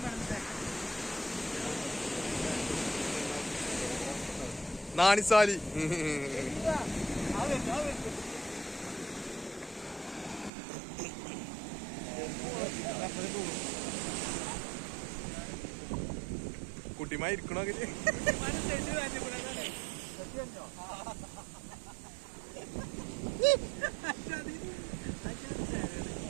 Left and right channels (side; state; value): left; drops out; at 10.5 s